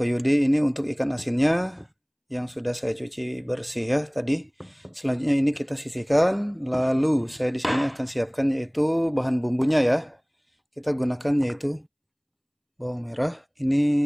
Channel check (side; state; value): both; identical; correlation 1.00